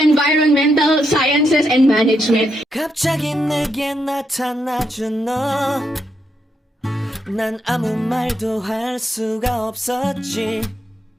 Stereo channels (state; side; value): normal; both; correlation 0.81